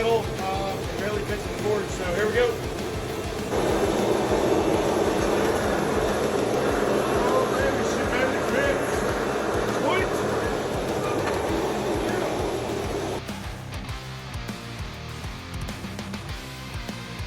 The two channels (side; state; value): both; identical; correlation 1.00